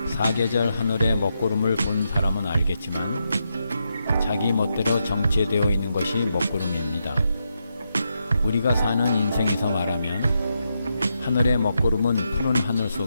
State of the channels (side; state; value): both; inverted; correlation -0.84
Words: 사계절 하늘의 먹구름을 본 사람은 알겠지만 자기 멋대로 정체되어 있는 것이 먹구름입니다. 우리가 사는 인생에서 말하면 하늘의 먹구름은 푸른 하늘